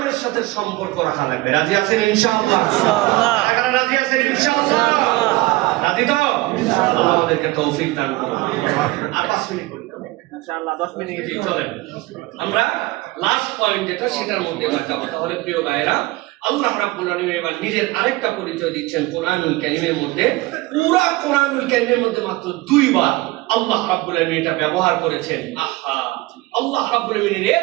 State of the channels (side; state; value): left; quieter; 20.5 dB